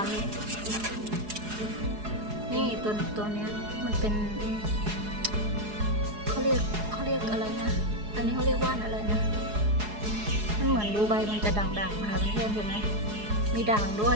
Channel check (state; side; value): late; left; 4.8 ms